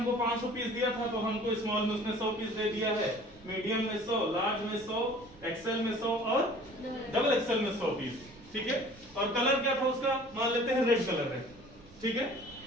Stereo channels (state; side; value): noise; right; rumble, 23 dB below the sound